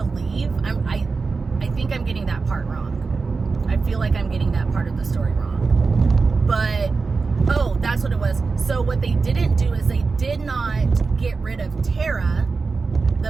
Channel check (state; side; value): quieter; left; 4.4 dB